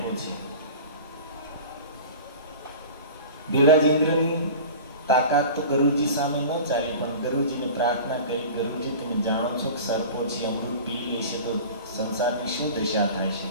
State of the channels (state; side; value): inverted; both; correlation -0.37